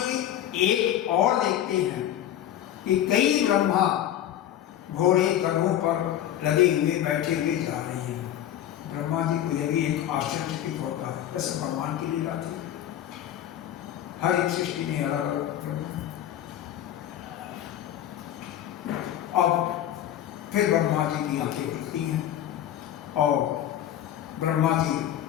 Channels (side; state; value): right; quieter; 11.5 dB